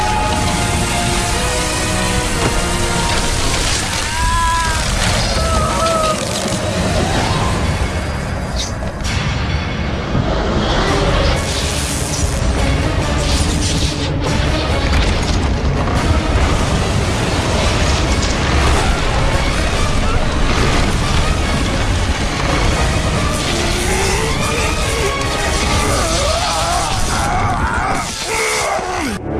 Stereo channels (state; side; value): identical; both; correlation 1.00